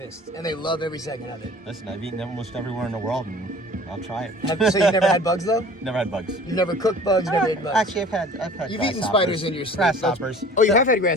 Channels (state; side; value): normal; both; correlation 0.46